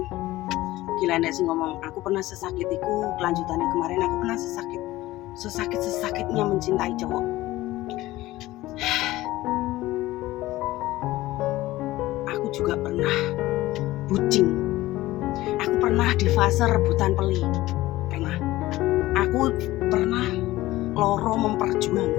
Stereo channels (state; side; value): quieter; right; 17.3 dB